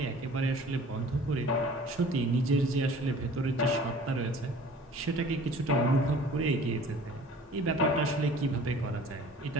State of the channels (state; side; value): normal; both; correlation 0.47